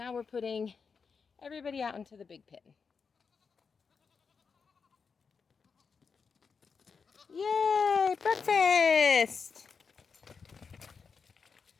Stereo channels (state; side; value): quieter; right; 5.5 dB